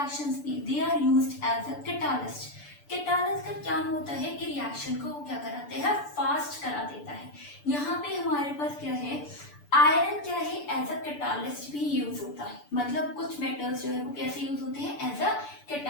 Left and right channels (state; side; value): late; right; 6.9 ms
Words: में they are used as a catalyst. Catalyst का क्या होता है कि रिएक्शन को वो क्या कराते हैं, फास्ट करा देता है। यहाँ पे हमारे पास क्या है, आयरन क्या है, एज अ कैटालिस्ट भी यूज होता है। मतलब कुछ मेटल्स जो है वो कैसे यूज होते हैं, एज अ